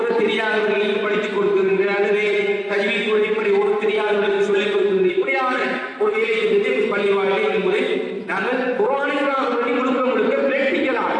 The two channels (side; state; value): both; identical; correlation 1.00